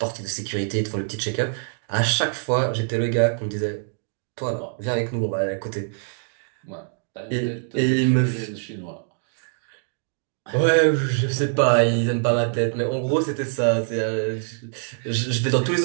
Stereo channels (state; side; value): silent; left; digital silence